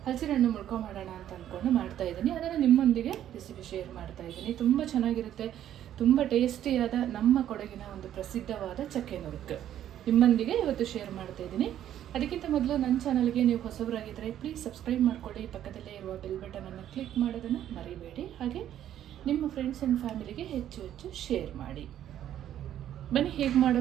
ಹಲಸಿನ ಹಣ್ಣು ಮುಳ್ಕ ಮಾಡೋಣ ಅಂತ ಅಂದ್ಕೊಂಡು ಮಾಡ್ತಾ ಇದ್ದೀನಿ. ಅದನ್ನು ನಿಮ್ಮೊಂದಿಗೆ ರೆಸಿಪಿ ಶೇರ್ ಮಾಡ್ತಾ ಇದ್ದೀನಿ. ತುಂಬ ಚೆನ್ನಾಗಿರುತ್ತೆ, ತುಂಬ ಟೇಸ್ಟಿಯಾದ ನಮ್ಮ ಕೊಡಗಿನ ಒಂದು ಪ್ರಸಿದ್ಧವಾದ ಚಕ್ಕೆ ನುರುಕು ನಿಮ್ಮೊಂದಿಗೆ ಇವತ್ತು ಶೇರ್ ಮಾಡ್ತಾ ಇದ್ದೀನಿ. ಅದಕ್ಕಿಂತ ಮೊದಲು ನನ್ನ ಚಾನಲ್ಗೆ ನೀವು ಹೊಸಬರಾಗಿದ್ದರೆ ಪ್ಲೀಸ್ ಸಬ್ಸ್ಕ್ರೈಬ್ ಮಾಡ್ಕೊಳ್ಳಿ. ಪಕ್ಕದಲ್ಲೇ ಇರುವ ಬೆಲ್ ಬಟನನ್ನು ಕ್ಲಿಕ್ ಮಾಡೋದನ್ನು ಮರಿಬೇಡಿ. ಹಾಗೆ ನಿಮ್ಮ ಫ್ರೆಂಡ್ಸ್ ಆ್ಯಂಡ್ ಫ್ಯಾಮಿಲಿಗೆ ಹೆಚ್ಚು ಹೆಚ್ಚು ಶೇರ್ ಮಾಡಿ. ಬನ್ನಿ ಹೇಗೆ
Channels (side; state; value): left; quieter; 11.2 dB